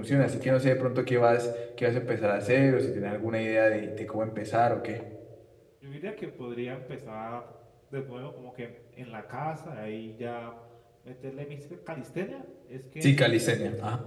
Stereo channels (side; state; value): both; identical; correlation 1.00